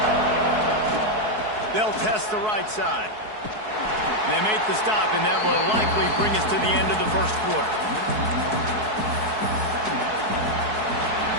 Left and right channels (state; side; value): late; left; 4.7 ms